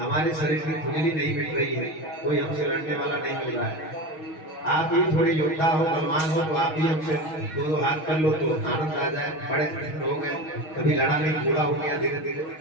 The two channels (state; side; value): late; right; 6.3 ms